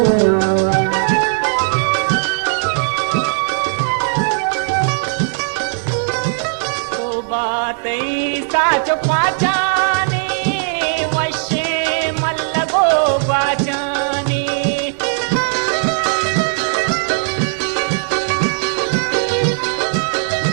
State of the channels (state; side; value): silent; left; digital silence